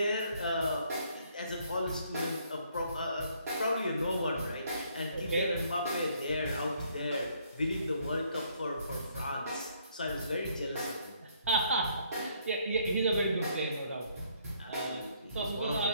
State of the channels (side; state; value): both; inverted; correlation -0.67